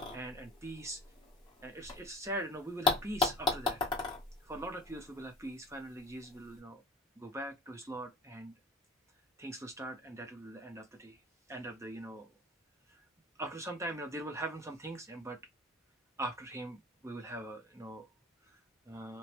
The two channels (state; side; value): normal; both; correlation 0.40